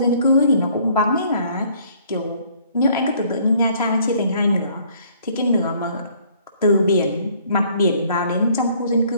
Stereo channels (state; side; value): inverted; both; correlation -0.61